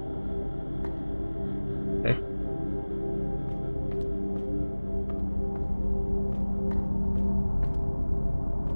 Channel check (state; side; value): inverted; both; correlation -1.00